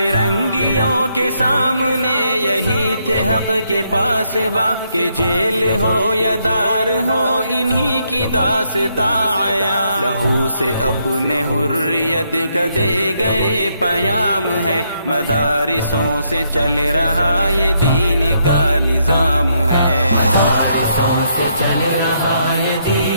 کے سامنے یہی تھے حق کے پاسباں، کہ جیل ہو یا دار ہو انہی کی داستاں آیا۔ لہو سے اپنے حریت کا دے گئے پیام ہے، مدارسوں سے چل رہا یہ دین کا نظام ہے۔ مدارسوں سے چل رہا یہ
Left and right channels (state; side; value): inverted; both; correlation -0.75